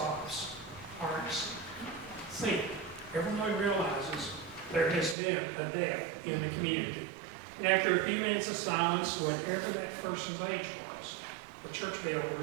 Hearts sink. Everyone realizes there has been a death in the community. And after a few minutes of silence, whatever that person's age was, the church bell would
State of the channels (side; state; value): left; drops out; at 5.2 s